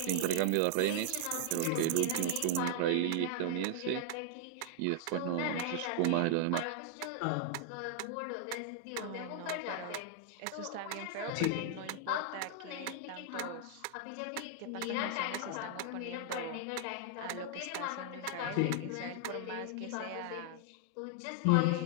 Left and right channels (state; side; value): different; both; correlation -0.01